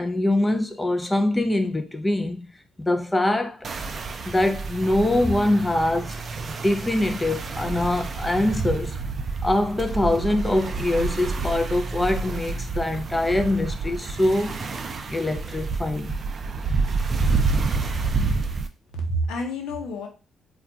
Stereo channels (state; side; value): normal; both; correlation 0.86